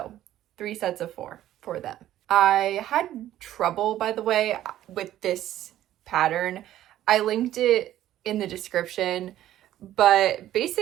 3 sets of 4 for them. I had trouble, by the way, with this pattern. I linked it in the description, but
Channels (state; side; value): quieter; left; 12.9 dB